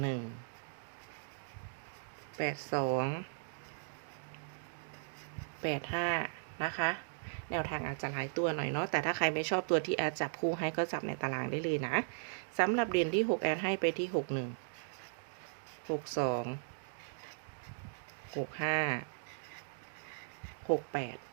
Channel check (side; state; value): left; silent; digital silence